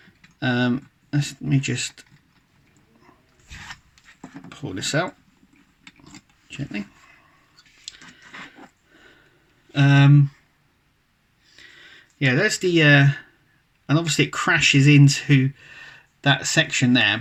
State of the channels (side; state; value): both; identical; correlation 1.00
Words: Let me just pull this out gently. Yeah, there's the and obviously it crashes into that section